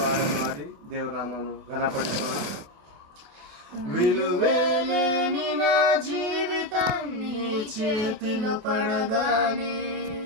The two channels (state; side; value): late; left; 28 ms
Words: ಹಾಡನ್ನು ಹಾಡಿ ದೇವರ ನಾಮವನ್ನು ಘನಪಡಿಸೋಣ. విలువేలేని నా జీవితం నీ చేతిలో పడగానే